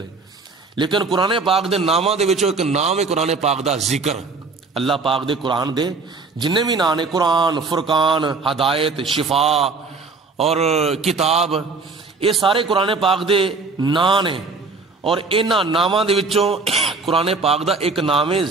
لیکن قرآن پاک دے ناماں دے وچوں ایک نام ہے قرآن پاک دا ذکر. اللہ پاک دے قرآن دے جننے بھی نام نے, قرآن, فرقان, ہدایت, شفا اور کتاب, یہ سارے قرآن پاک دے نام نے. اور انہاں ناماں دے وچوں قرآن پاک دا ایک نام ہے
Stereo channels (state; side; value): quieter; left; 4.1 dB